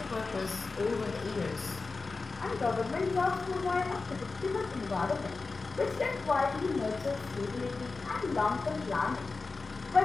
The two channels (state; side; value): quieter; right; 4.0 dB